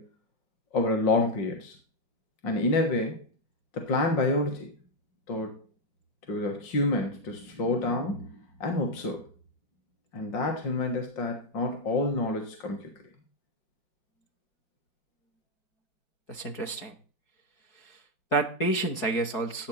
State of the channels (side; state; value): right; late; 4.7 ms